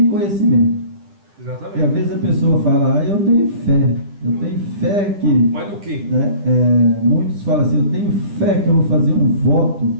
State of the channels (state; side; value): late; left; 10 ms